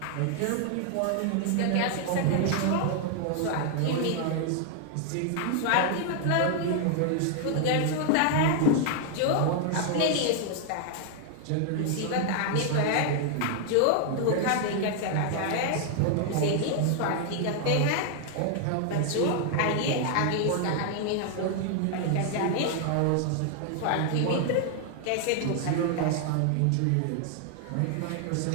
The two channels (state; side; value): different; both; correlation 0.00